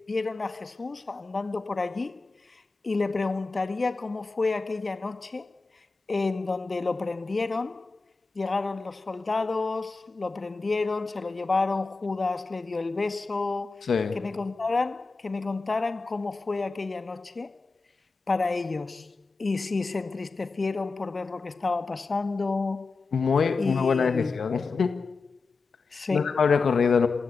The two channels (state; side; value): quieter; right; 4.1 dB